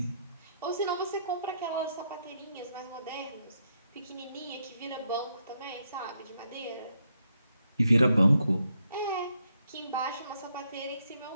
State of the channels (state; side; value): inverted; both; correlation -0.77